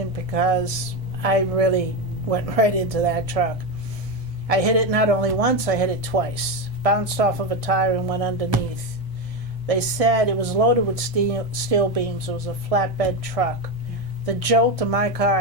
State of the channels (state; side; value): late; left; 1.6 ms